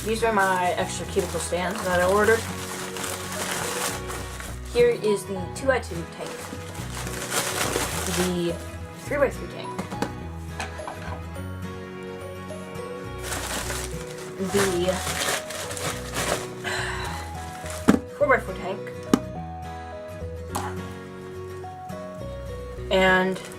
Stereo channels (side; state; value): both; identical; correlation 1.00